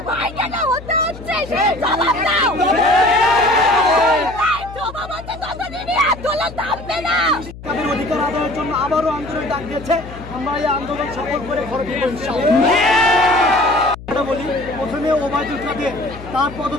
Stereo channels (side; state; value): left; noise; hum, 15 dB below the sound